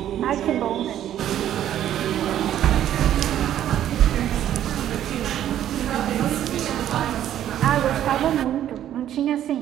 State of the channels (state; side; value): quieter; left; 11.3 dB